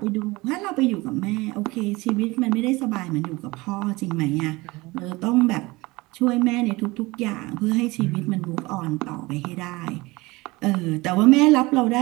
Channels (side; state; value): left; quieter; 22.2 dB